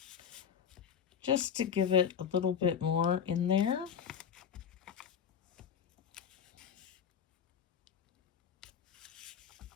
just to give it a little bit more in there.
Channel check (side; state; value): right; quieter; 7.9 dB